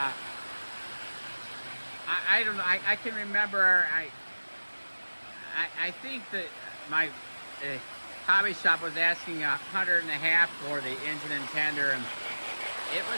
I don't know. I can remember. I think that my hobby shop was asking $150 for the engine and tender, and it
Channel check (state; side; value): inverted; both; correlation -1.00